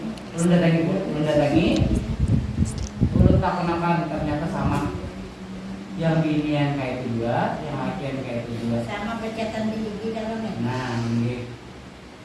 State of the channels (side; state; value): both; identical; correlation 1.00